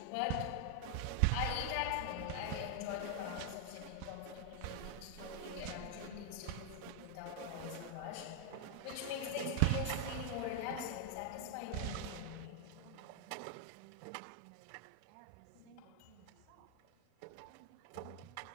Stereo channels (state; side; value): different; both; correlation 0.00